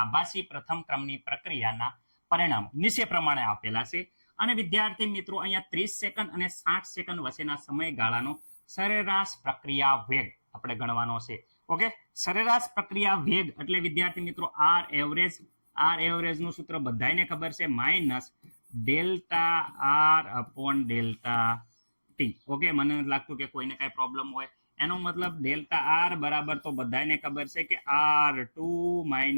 પ્રથમ ક્રમની પ્રક્રિયાના પરિણામો નીચે પ્રમાણે આપેલા છે. અને વિદ્યાર્થી મિત્રો, અહીંયા 30 સેકન્ડ અને 60 સેકન્ડ વચ્ચેના સમયગાળાનો સરેરાશ પ્રક્રિયા વેગ આપણે ગણવાનો છે. ઓકે, સરેરાશ પ્રક્રિયા વેગ એટલે વિદ્યાર્થી મિત્રો આર એવરેજ નું સૂત્ર બધાને ખબર છે, minus delta R upon delta T. Okay, મને નથી લાગતું કે કોઈને કઈ પ્રોબ્લેમ હોય. એનો મતલબ ડેલ્ટા આર બરાબર તો બધાને ખબર છે કે R2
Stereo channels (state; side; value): inverted; both; correlation -1.00